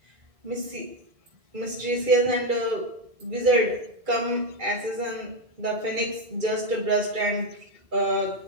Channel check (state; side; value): late; left; 2.3 ms